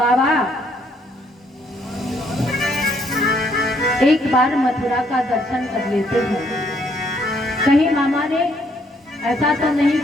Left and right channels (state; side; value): normal; both; correlation 0.69